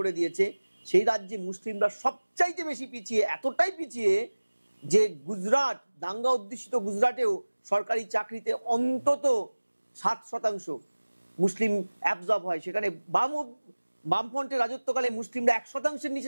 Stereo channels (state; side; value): inverted; both; correlation -1.00